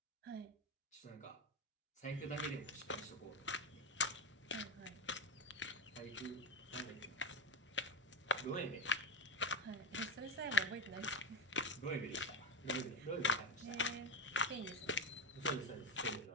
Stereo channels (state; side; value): normal; both; correlation 0.14